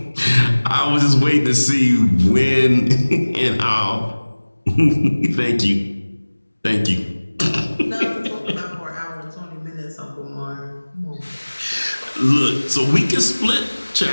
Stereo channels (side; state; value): both; inverted; correlation -1.00